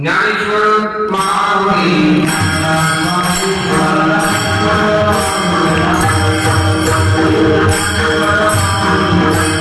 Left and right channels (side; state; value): both; identical; correlation 1.00